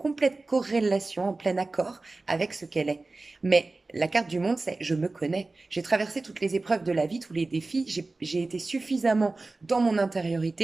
corrélation, en plein accord avec ce qu'elle est. Mais la carte du monde, c'est je me connais. J'ai traversé toutes les épreuves de la vie, tous les défis. J'ai été suffisamment dans mon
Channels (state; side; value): quieter; left; 3.3 dB